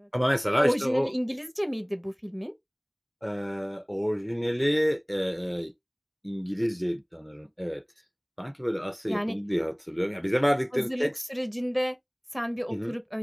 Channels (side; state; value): both; identical; correlation 1.00